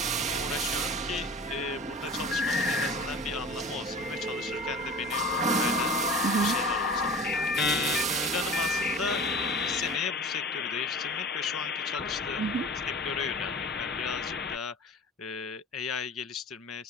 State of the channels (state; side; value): normal; both; correlation 0.38